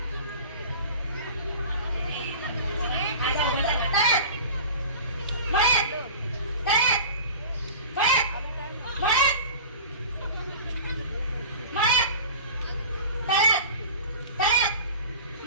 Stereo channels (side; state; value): both; inverted; correlation -0.37